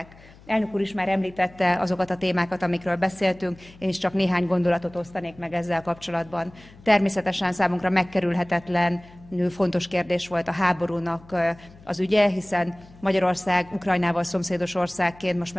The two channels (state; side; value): noise; left; hum, 23 dB below the sound